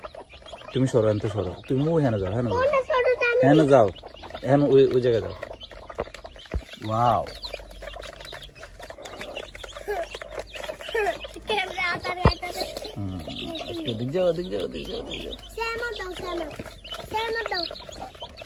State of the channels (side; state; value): both; identical; correlation 1.00